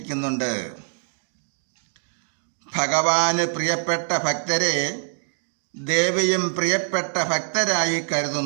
ഭഗവാന് പ്രിയപ്പെട്ട ഭക്തരെ ദേവിയും പ്രിയപ്പെട്ട ഭക്തരായി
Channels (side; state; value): left; silent; digital silence